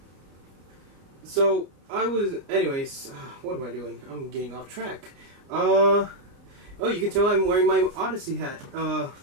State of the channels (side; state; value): left; late; 29 ms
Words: So, anyways, what am I doing? I'm getting off track. Oh, you can tell I'm wearing my Odyssey hat.